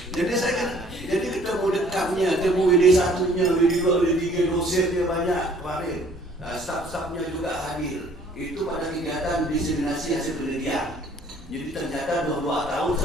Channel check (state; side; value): normal; both; correlation 0.57